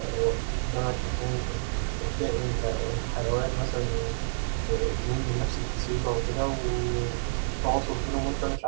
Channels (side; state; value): left; silent; 59 dB below the other